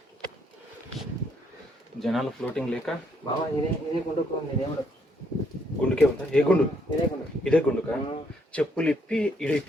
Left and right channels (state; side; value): normal; both; correlation 0.71